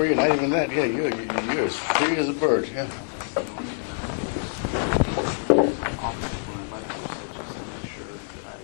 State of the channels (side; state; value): right; silent; 61 dB below the other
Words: you, not even that. Yeah, you're as free as a bird, yeah.